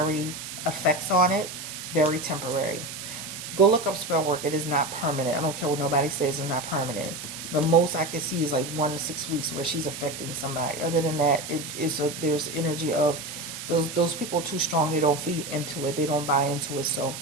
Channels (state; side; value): noise; right; hiss, 9 dB below the sound